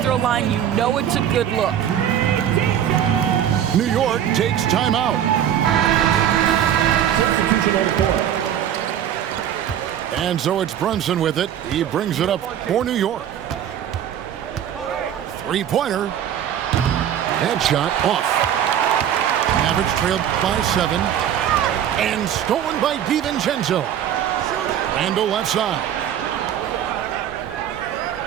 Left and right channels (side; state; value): left; quieter; 10.0 dB